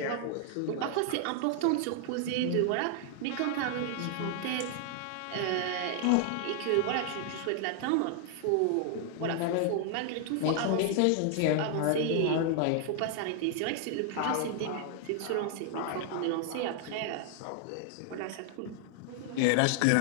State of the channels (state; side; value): different; both; correlation 0.00